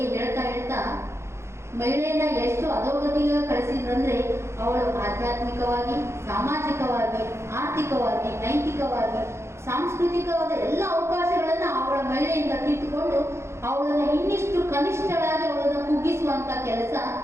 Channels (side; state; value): left; late; 0.13 ms